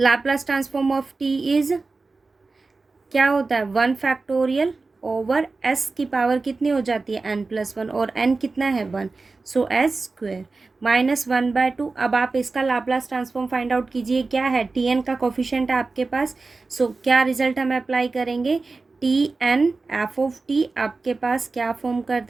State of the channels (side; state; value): left; quieter; 3.8 dB